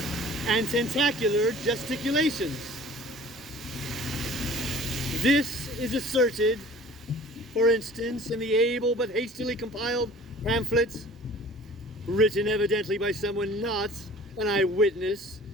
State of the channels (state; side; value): normal; both; correlation 0.47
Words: and tentacular gesticulations. This is asserted, for instance, in the able but hastily compiled pamphlets, written evidently by someone not an eyewitness